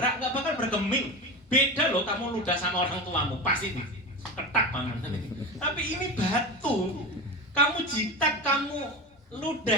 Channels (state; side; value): normal; both; correlation 0.24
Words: nggak bakal bergeming. Beda loh, kamu ludah sama orang tuamu, pasti ketak paman. Tapi ini batu, kamu jitak, kamu